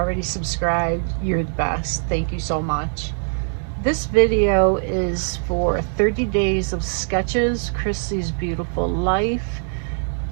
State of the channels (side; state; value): left; silent; digital silence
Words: subscribed, you're the best. Thank you so much. This video is for 30 days of sketches, Christy's Beautiful Life.